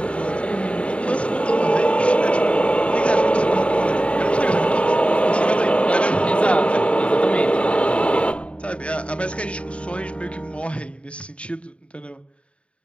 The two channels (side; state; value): right; late; 0.060 ms